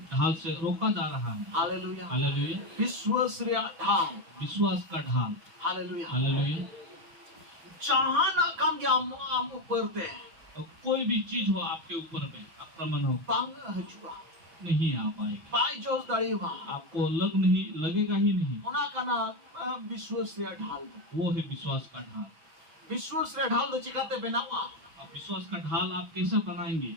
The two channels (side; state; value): left; late; 6.4 ms